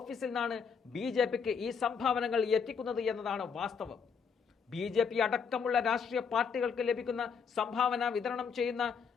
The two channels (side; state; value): right; quieter; 6.3 dB